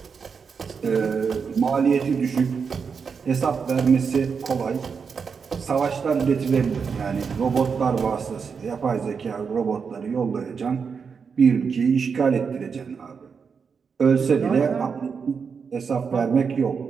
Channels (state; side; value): quieter; left; 5.9 dB